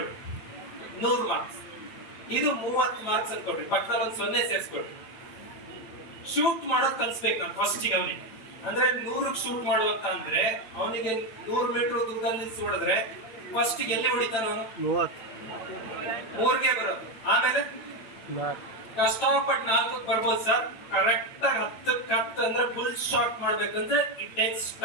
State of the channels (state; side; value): late; right; 9.1 ms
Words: 100 ಮಾರ್ಕ್ಸ್. ಇದು 30 ಮಾರ್ಕ್ಸ್ ಅನ್ಕೊಳ್ರಿ, ಪಕ್ಕದಲ್ಲಿ ಒಂದು 0 ಸೇರಿಸ್ಕೊಳ್ರಿ. ಶೂಟ್ ಮಾಡೋದ್ ಕಲ್ಸ್ಬೇಕು ನಾನು ಫಸ್ಟಿಗೆ ಅವನಿಗೆ. ಅಂದ್ರೆ 100ಕ್ಕೆ ಶೂಟ್ ಮಾಡುವಂತ ಅಂದ್ರೆ ಅವನಿಗೆ 100 ಮೀಟರ್ ದೂರದಲ್ಲಿ ಹೊಡೆದ್ರೆ ಫಸ್ಟಿಗೆ ಎಲ್ಲಿ ಹೊಡಿತಾನ ಅವನು? 3ಗೆ ಬರೋದು. ಆಮೇಲೆ ಕಷ್ಟಪಟ್ಟು 4ಕ್ಕೆ ಬರ್ಬೋದು ಸರ್, ಕರೆಕ್ಟ್ ಆಗಿ 10ಕ್ಕೆ 10 ಅಂದ್ರೆ ಫುಲ್ ಶಾಟ್ ಮಾಡ್ಬೇಕಂದ್ರೆ ಇಟ್ ಟೇಕ್ಸ್